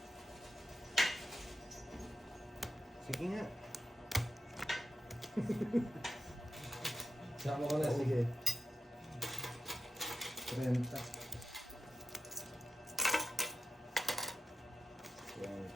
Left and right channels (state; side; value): normal; both; correlation 0.88